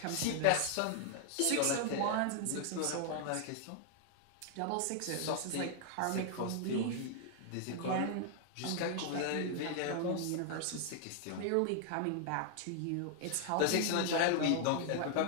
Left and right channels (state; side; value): different; both; correlation 0.00